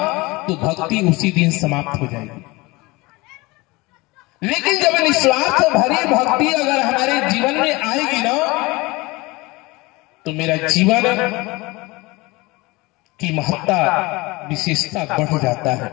तो भक्ति उसी दिन समाप्त हो जाएगी। लेकिन जब निस्वार्थ भरी भक्ति अगर हमारे जीवन में आएगी ना, तो मेरा जीवन की महत्ता विशेषता बढ़ जाता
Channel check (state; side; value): quieter; right; 23.0 dB